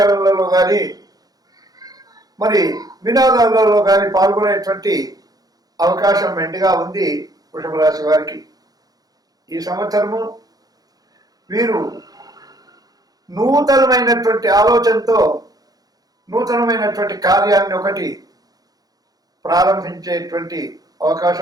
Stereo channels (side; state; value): left; late; 0.18 ms